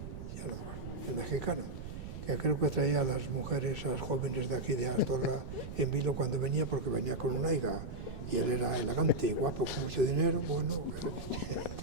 no me acuerdo, el mexicano, que creo que traía a las mujeres, a las jóvenes de aquí de Astorga en vilo cuando venía, porque venía con una higa, y él era elegante y guapo, con mucho dinero, bueno,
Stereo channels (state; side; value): noise; right; rumble, 8 dB below the sound